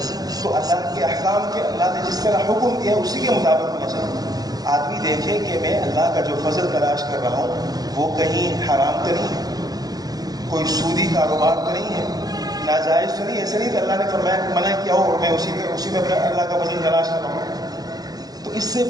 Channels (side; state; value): left; late; 0.19 ms